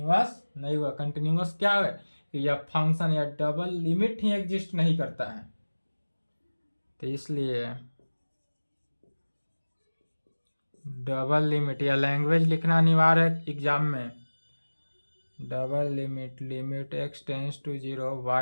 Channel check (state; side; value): inverted; both; correlation -1.00